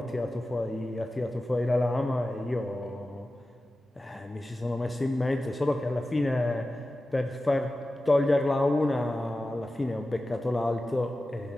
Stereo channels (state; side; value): normal; both; correlation 0.94